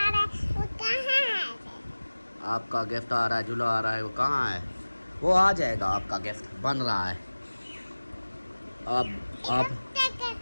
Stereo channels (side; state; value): both; inverted; correlation -1.00